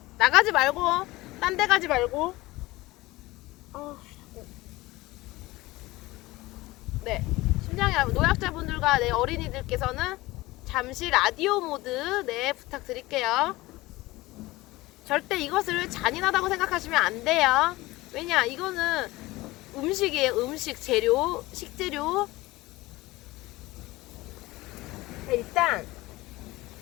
나가지 말고 딴 데 가지 말고. 네, 심장이 노약자분들과 내 어린이들께서는 잠시 라디오 모드 네 부탁드릴게요. 절대 이것을 잔인하다고 생각하시면 안 돼요. 왜냐, 이거는 음식이에요. 음식 재료, 식재료. 일단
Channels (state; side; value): quieter; right; 19.6 dB